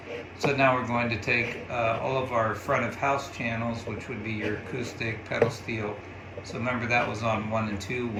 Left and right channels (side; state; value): both; identical; correlation 1.00